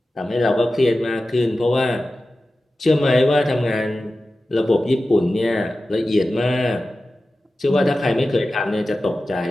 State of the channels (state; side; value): normal; both; correlation 0.94